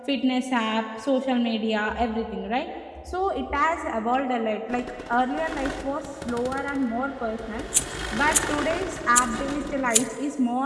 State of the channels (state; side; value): identical; both; correlation 1.00